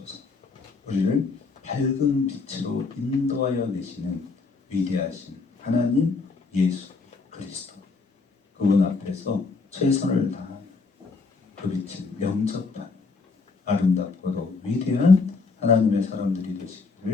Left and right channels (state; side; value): quieter; right; 4.3 dB